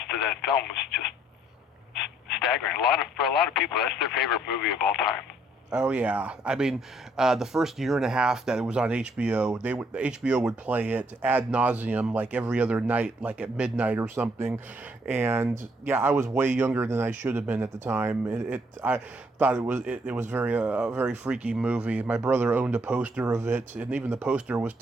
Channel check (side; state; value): both; normal; correlation 0.67